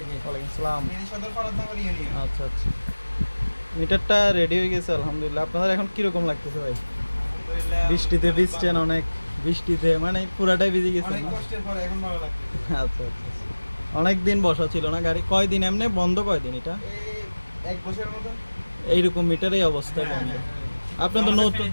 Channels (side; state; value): both; inverted; correlation -1.00